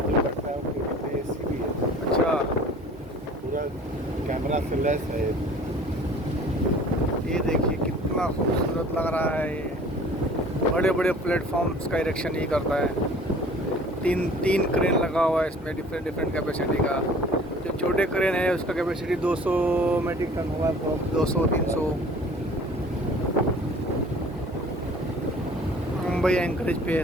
अच्छा, पूरा कैमरा से लेस है। ये देखिए कितना खूबसूरत लग रहा है। ये बड़े बड़े प्लेटफॉर्म्स का इरेक्शन ही करता है। तीन क्रेन लगा हुआ है इसमें, डिफरेंट डिफरेंट कैपेसिटी का। जो छोटे क्रेन है उसका कैपेसिटी 200 मेट्रिक टन होगा, 200-300। मुंबई एंकरेज पे है,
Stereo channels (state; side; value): normal; both; correlation 0.49